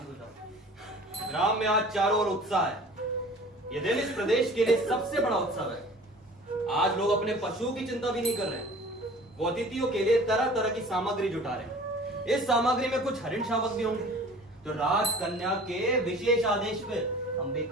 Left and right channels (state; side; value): normal; both; correlation 0.45